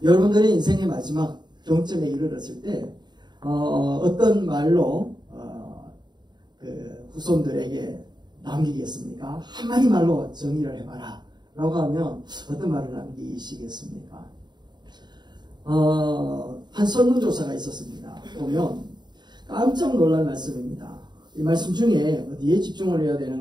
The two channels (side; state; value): left; late; 0.21 ms